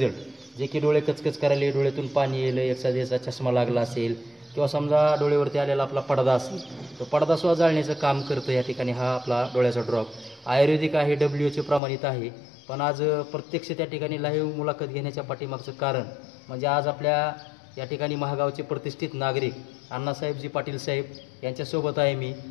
जे की डोळे कचकच करायला, डोळ्यातून पाणी येलं, एखाद्याचा चष्मा लागला असेल किंवा समजा डोळ्यावरती आलेला आपला पडदा असेल, तो पडदासुद्धा जाळण्याचं काम करतं या ठिकाणी हा आपला डोळ्याचा ड्रॉप. आयुर्वेदिक आहे, WHO प्रमाणित आहे. पण आज प्रत्यक्ष त्या ठिकाणी लाईव्ह मुलाखत घेण्याच्या पाठीमागचं कारण म्हणजे आज आपल्या या ठिकाणी महागावचे प्रतिष्ठित नागरिक अण्णासाहेबजी पाटील साहेब यांच्यासोबत आहे मी,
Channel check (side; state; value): right; drops out; at 11.8 s